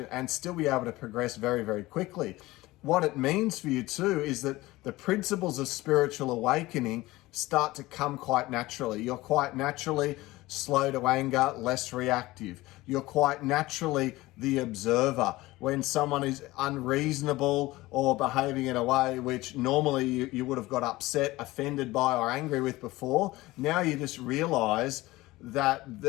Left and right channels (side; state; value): right; quieter; 19.0 dB